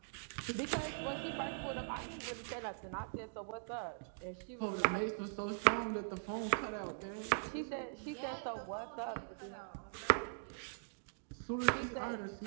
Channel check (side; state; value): left; silent; digital silence